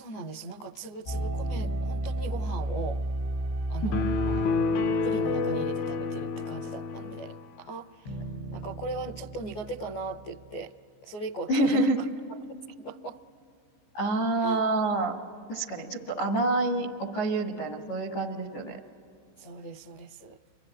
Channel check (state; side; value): late; right; 14 ms